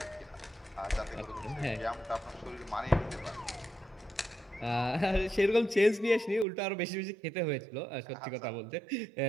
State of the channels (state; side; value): drops out; left; at 6.5 s